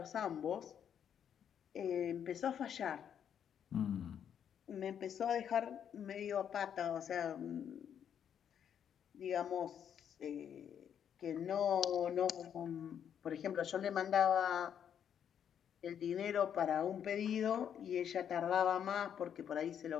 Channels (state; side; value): quieter; right; 8.7 dB